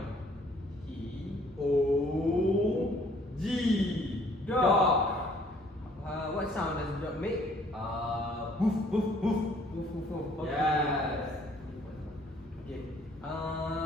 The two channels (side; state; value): both; normal; correlation 0.60